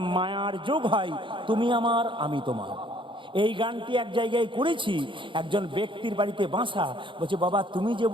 মায়ার যোগ হয়, তুমি আমার আমি তোমার। এই গানটি এক জায়গায় করেছি, একজন ব্যক্তির বাড়িতে বাসা, বলছে বাবা তুমি যে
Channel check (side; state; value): left; late; 0.24 ms